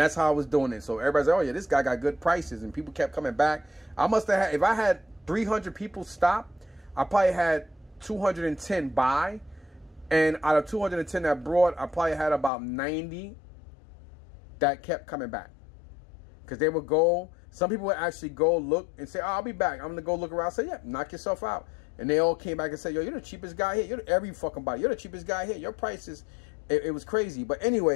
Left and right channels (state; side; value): drops out; right; at 12.5 s